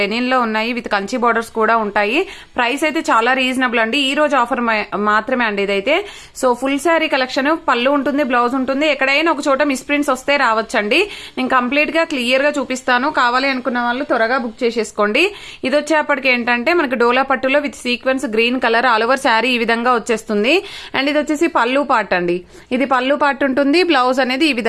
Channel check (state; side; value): identical; both; correlation 1.00